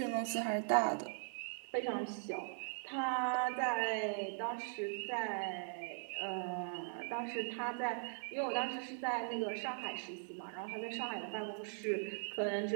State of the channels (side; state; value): left; silent; digital silence